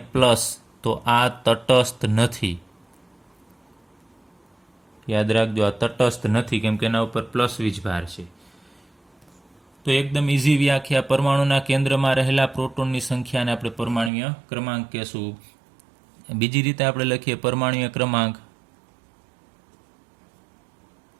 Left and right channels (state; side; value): drops out; left; at 14.1 s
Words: તો આ તટસ્થ નથી. યાદ રાખજો, આ તટસ્થ નથી, કેમ કે એના ઉપર પ્લસ વીજભાર છે. તો એકદમ ઇઝી વ્યાખ્યા. પરમાણુના કેન્દ્રમાં રહેલા પ્રોટોનની સંખ્યાને આપણે પરમાણ્વીય ક્રમાંક કહેશું. બીજી રીતે આપણે લખીએ પરમાણ્વીય